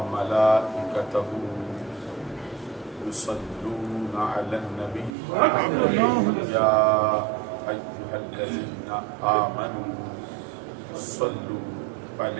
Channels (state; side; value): drops out; left; at 5.2 s